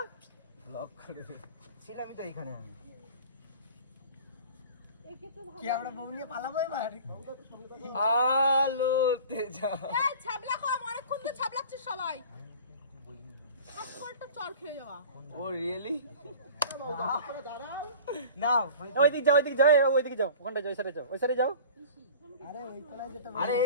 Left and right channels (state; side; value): inverted; both; correlation -0.41